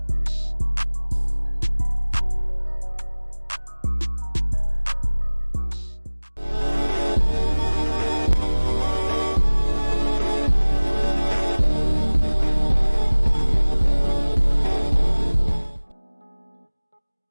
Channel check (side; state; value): both; inverted; correlation -1.00